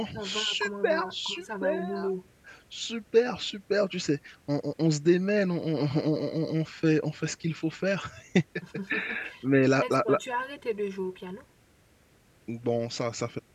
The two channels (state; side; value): identical; both; correlation 1.00